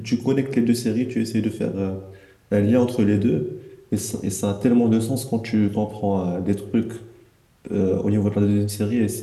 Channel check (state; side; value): identical; both; correlation 1.00